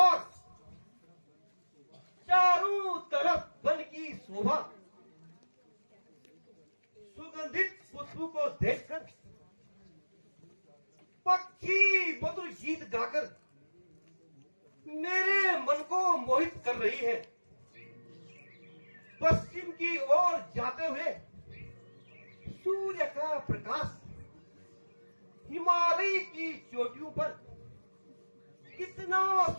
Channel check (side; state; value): both; inverted; correlation -1.00